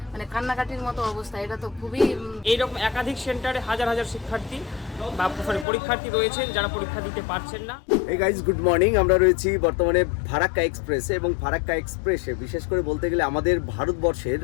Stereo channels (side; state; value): right; drops out; at 5.7 s